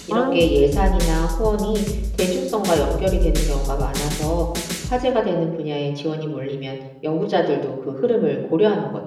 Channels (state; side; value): identical; both; correlation 1.00